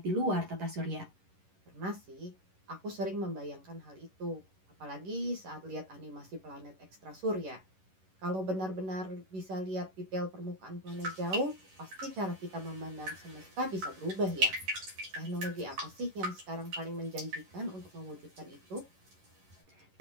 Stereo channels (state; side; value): late; left; 11 ms